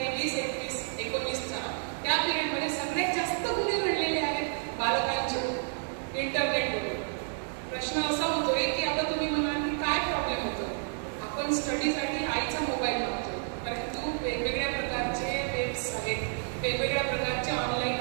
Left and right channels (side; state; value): left; silent; 57 dB below the other